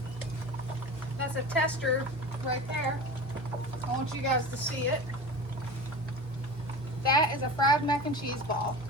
that's a tester right there. I want you guys to see it. That is a fried mac and cheese ball.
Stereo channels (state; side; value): normal; both; correlation 0.33